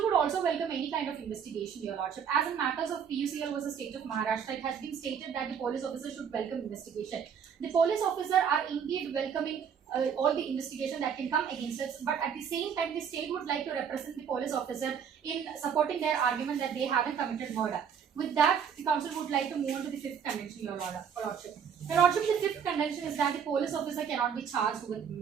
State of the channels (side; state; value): left; quieter; 7.4 dB